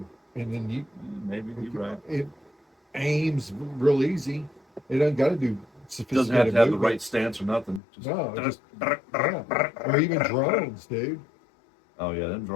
and then Maybe you're right. it aims real easy. It doesn't got to do Doesn't have sophisticated to have the movement. right stance or nothing. No, yeah. Or even drones, dude. Oh yeah, them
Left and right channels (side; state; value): right; drops out; at 7.8 s